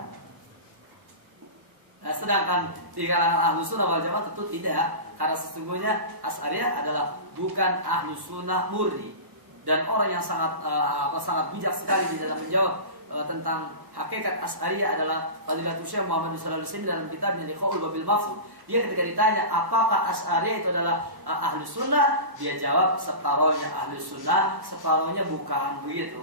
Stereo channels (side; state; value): left; late; 1.1 ms